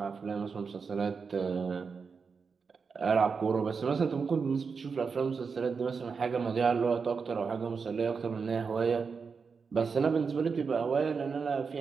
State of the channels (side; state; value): left; quieter; 5.4 dB